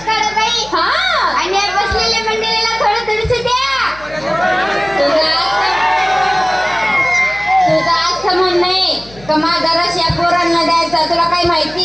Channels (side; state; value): left; noise; hum, 21 dB below the sound